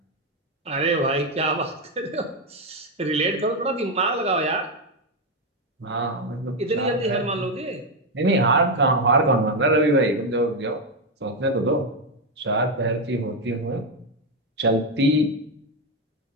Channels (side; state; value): both; normal; correlation 0.06